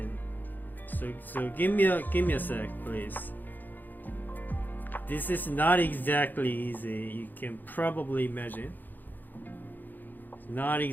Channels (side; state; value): right; late; 0.087 ms